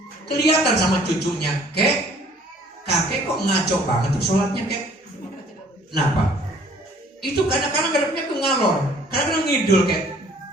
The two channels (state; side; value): normal; both; correlation 0.56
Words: Kelihatan sama cucunya, kakek kok ngaco banget tuh sholatnya, kek. Kenapa? Itu kadang-kadang ngadepnya ke ngalor, kadang-kadang ngidul, kek.